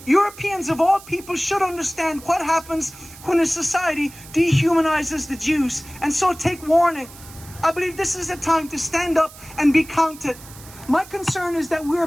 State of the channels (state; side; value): noise; right; hiss, 19 dB below the sound